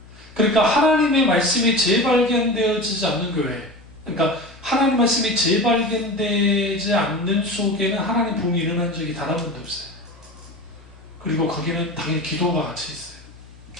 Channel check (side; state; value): left; noise; hum, 22 dB below the sound